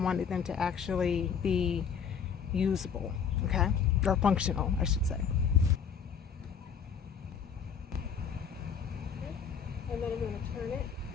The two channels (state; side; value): quieter; right; 6.9 dB